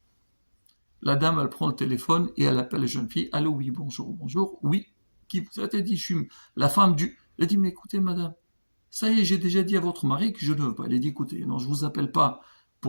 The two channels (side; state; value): both; inverted; correlation -1.00